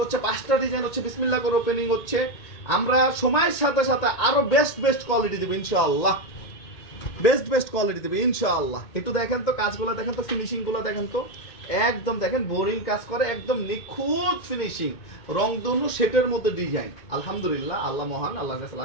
হচ্ছে 5টা ডিজাইন হচ্ছে বিসমিল্লাহ করে ওপেনিং হচ্ছে। আমরা সময়ের সাথে সাথে আরো বেস্ট কোয়ালিটি দেবো ইনশাআল্লাহ, বেস্ট কোয়ালিটি দেবে ইনশাআল্লাহ। একটু দেখেন তো কাজগুলো, দেখেন তো ফিনিশিং গুলো দেখেন তো, একদম দেখেন বোরিং কাজ করে, একদম নিখুঁত ফিনিশিং, রংধনু সেটের মধ্যে ডিজাইন। আলহামদুলিল্লাহ, আল্লাহ মহান, আল্লাহর কাছে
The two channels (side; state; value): right; late; 2.2 ms